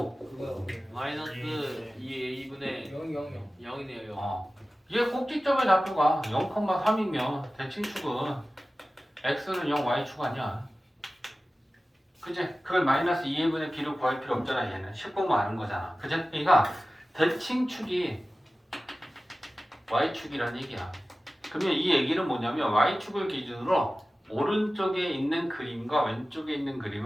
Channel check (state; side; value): normal; both; correlation 0.96